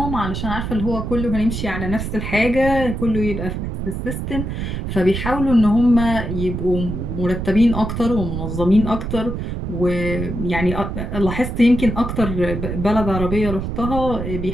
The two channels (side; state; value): right; noise; rumble, 4 dB below the sound